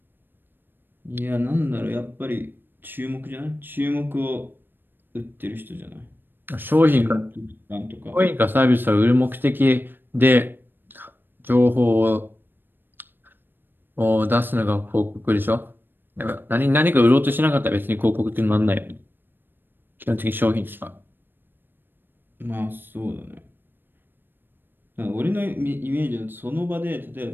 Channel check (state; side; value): late; left; 0.096 ms